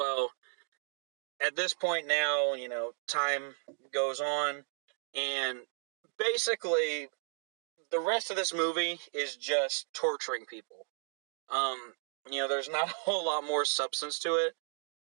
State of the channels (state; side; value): silent; left; digital silence